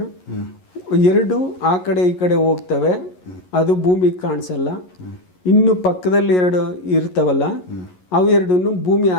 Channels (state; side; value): late; right; 11 ms